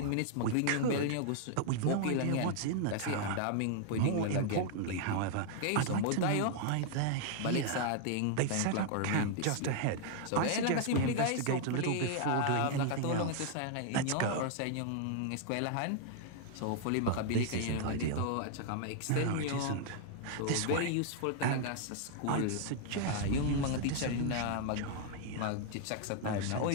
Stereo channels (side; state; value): both; different; correlation 0.00